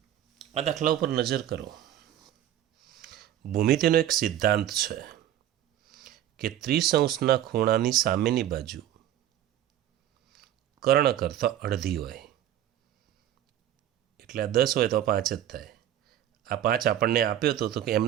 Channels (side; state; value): left; quieter; 11.7 dB